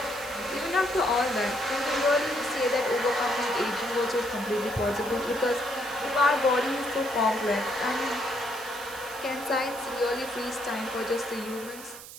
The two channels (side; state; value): right; noise; hiss, 14 dB below the sound